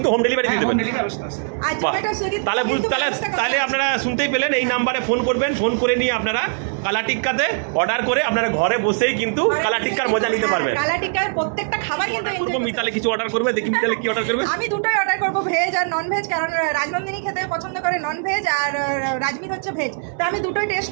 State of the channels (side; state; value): left; silent; 65 dB below the other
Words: হোম ডেলিভারি দিয়ে দেবেন। তাহলে আপনারা শুনতেই পেলেন, এই নাম্বারে ফোন করবেন, ফোন করে নিয়ে আপনারা কালা টিক্কাতে অর্ডার করে আপনারা ঘরে বসেই কিন্তু কালা টিক্কার মজা নিতে পারবেন। কালা টিক্কার প্রত্যেকটা খাবার কিন্তু মিতালি কিছু অর্ডার করবে, দেখি মিতালি কি অর্ডার করবে। আমি দুটোই অর্ডার করবো, ভেজ আর নন ভেজ, কারণ রাজনন্দিনী খেতে পছন্দ করে নন ভেজ, আর রাজমিত হচ্ছে ভেজ। তো আমি দুটোই টেস্ট